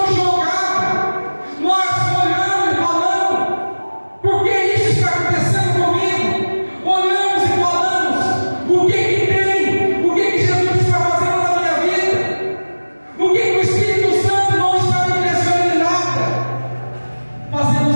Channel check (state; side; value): inverted; both; correlation -1.00